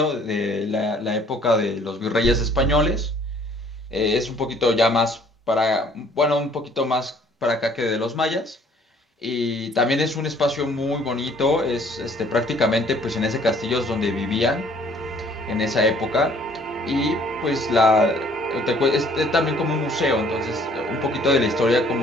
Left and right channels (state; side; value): normal; both; correlation 0.58